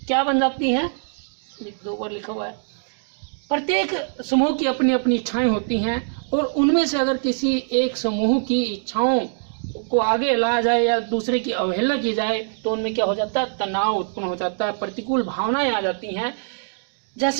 क्या बन जाती हैं? 2 बार लिखा हुआ है। प्रत्येक समूह की अपनी अपनी इच्छाएं होती हैं, और उनमें से अगर किसी एक समूह की इच्छाओं को आगे लाया जाए या दूसरे की अवहेलना की जाए तो उनमें क्या हो जाता है? तनाव उत्पन्न हो जाता है, प्रतिकूल भावनाएं आ जाती हैं।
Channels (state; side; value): silent; left; digital silence